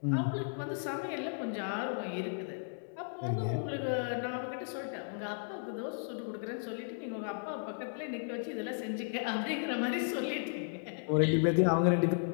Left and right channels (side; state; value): right; silent; digital silence